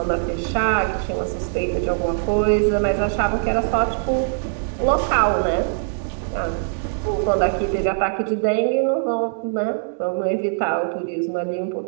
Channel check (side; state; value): left; silent; digital silence